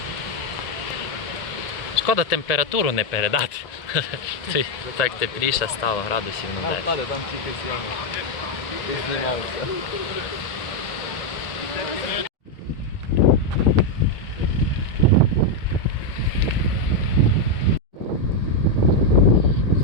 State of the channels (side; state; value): right; late; 1.7 ms